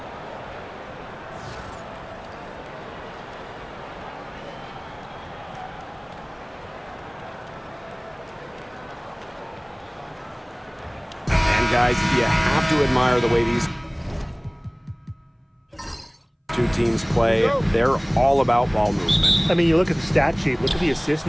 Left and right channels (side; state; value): both; identical; correlation 1.00